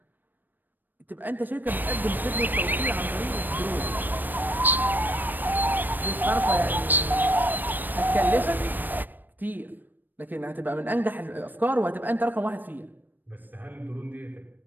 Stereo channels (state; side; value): late; left; 0.091 ms